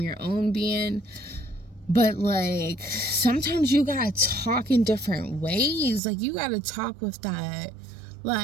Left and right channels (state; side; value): drops out; left; at 6.0 s